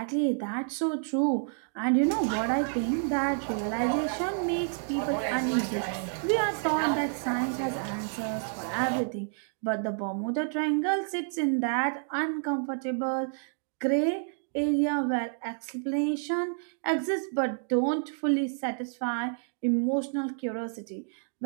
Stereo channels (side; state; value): left; silent; digital silence